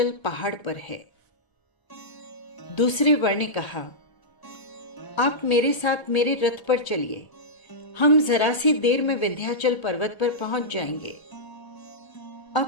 पहाड़ पर है। दूसरे वर ने कहा, आप मेरे साथ मेरे रथ पर चलिए, हम जरा सी देर में विंध्याचल पर्वत पर पहुंच जाएंगे।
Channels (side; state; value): right; late; 1.3 ms